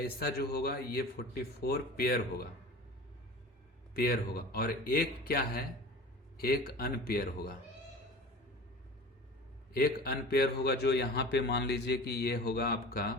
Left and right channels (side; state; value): both; normal; correlation 0.37